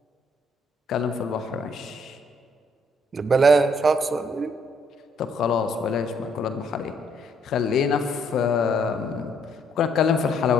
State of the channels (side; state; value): both; normal; correlation 0.68